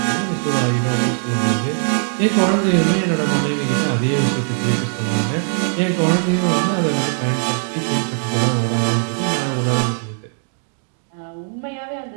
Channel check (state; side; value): silent; left; 59 dB below the other